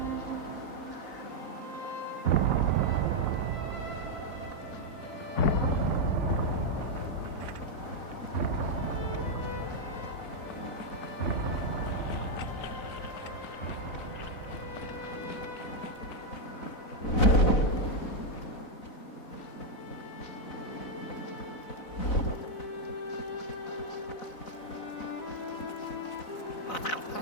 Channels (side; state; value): right; late; 4.0 ms